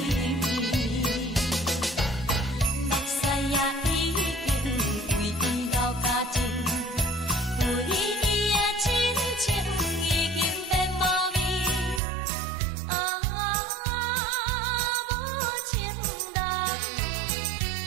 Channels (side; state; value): left; drops out; at 12.0 s